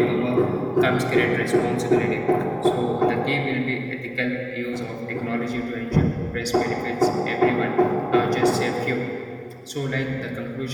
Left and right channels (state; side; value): identical; both; correlation 1.00